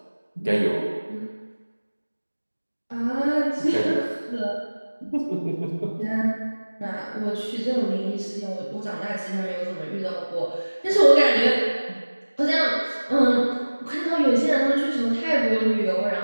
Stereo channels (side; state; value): both; inverted; correlation -1.00